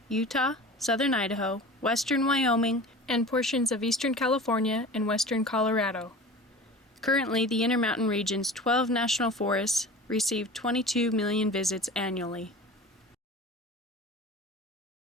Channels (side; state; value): both; normal; correlation 0.37